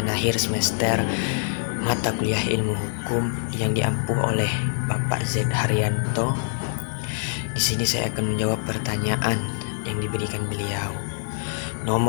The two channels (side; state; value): right; silent; digital silence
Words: akhir semester mata kuliah ilmu hukum yang diampuh oleh Bapak Z Haryanto. Di sini saya akan menjawab pertanyaan yang diberikan beliau.